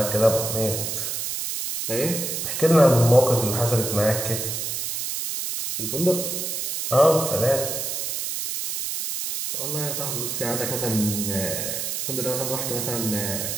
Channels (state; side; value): noise; right; hiss, 3 dB below the sound